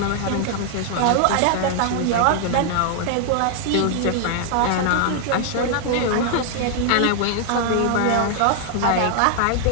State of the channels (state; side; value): different; both; correlation 0.00